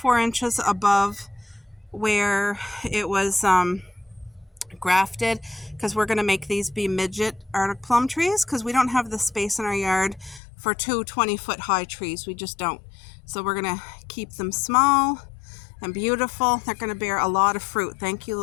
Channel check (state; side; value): drops out; right; at 10.4 s